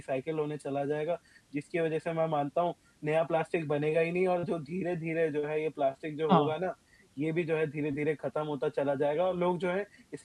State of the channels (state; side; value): identical; both; correlation 1.00